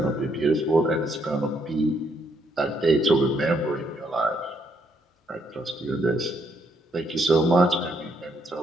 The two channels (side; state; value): both; normal; correlation 0.73